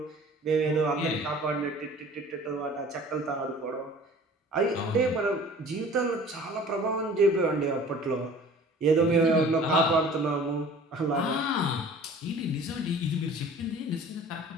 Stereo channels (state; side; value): normal; both; correlation 0.46